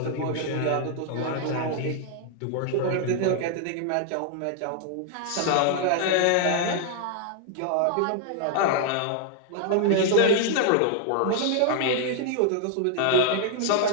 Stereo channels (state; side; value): different; both; correlation 0.00